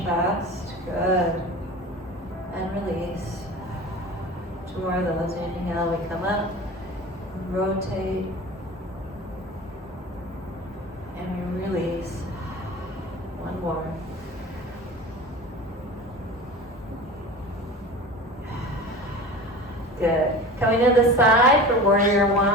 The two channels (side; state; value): both; normal; correlation 0.35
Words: Good. And release. Two more of those. Inhale, we come up, rotate, and we release. One more. Good. Coming to the side for warrior